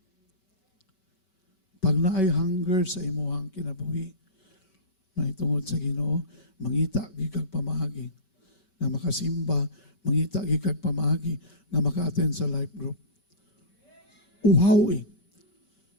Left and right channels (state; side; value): late; right; 5.2 ms